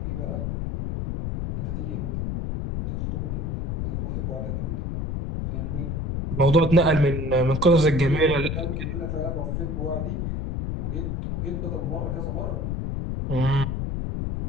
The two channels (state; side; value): noise; left; rumble, 2 dB below the sound